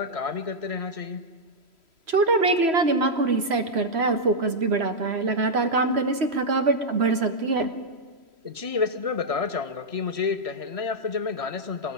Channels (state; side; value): late; left; 3.1 ms